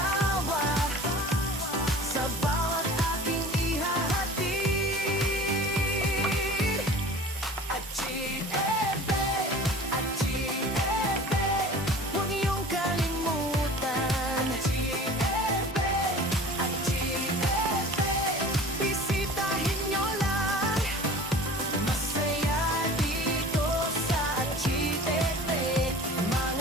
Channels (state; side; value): normal; both; correlation 0.41